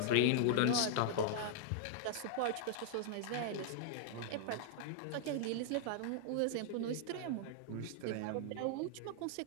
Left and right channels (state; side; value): different; both; correlation -0.01